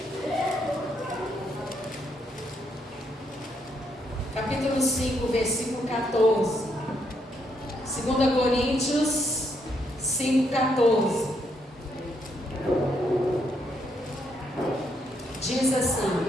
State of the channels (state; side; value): normal; both; correlation 0.75